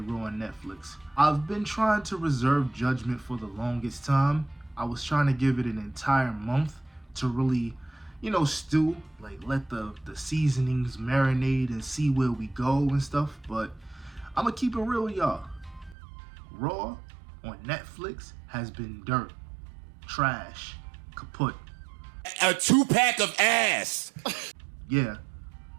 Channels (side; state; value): left; drops out; at 16.0 s